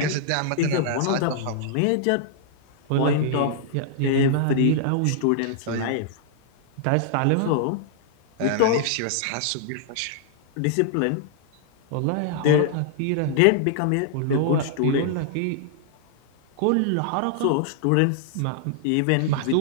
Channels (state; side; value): different; both; correlation -0.01